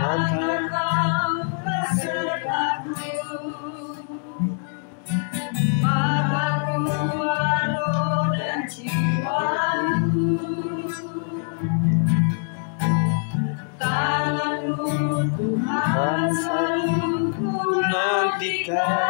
maka keluar roh dan jiwaku, tangan-Mu Tuhan selalu ku nantikan,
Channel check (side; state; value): right; silent; digital silence